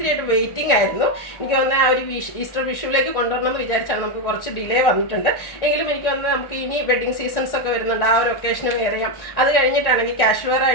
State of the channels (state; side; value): late; right; 1.6 ms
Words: വെയിറ്റിംഗ് ആയിരുന്നു. എനിക്ക് തോന്നുന്നത് ആ ഒരു ഈസ്റ്റർ വിഷുവിലേക്ക് കൊണ്ടുവരണമെന്ന് വിചാരിച്ചാൽ നമുക്ക് കുറച്ച് ഡിലേ വന്നിട്ടുണ്ട്. എങ്കിലും എനിക്ക് തോന്നുന്നത് നമുക്ക് ഇനി വെഡ്ഡിങ് സീസൺസ് ഒക്കെ വരുന്നുണ്ട്. ആ ഒരു ഒക്കേഷന് വെയർ ചെയ്യാം. അത് കഴിഞ്ഞിട്ടാണെങ്കിൽ ക്യാഷ് വെയർ